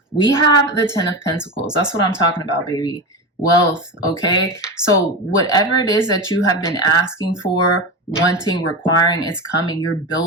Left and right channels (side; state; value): both; normal; correlation 0.22